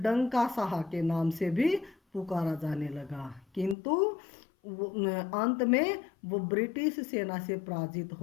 डंका शाह के नाम से भी पुकारा जाने लगा। किंतु अंत में वो ब्रिटिश सेना से पराजित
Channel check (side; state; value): right; drops out; at 3.8 s